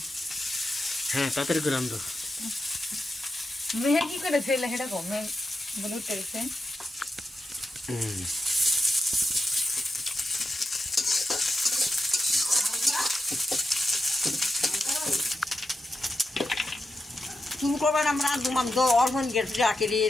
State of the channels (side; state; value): both; normal; correlation 0.87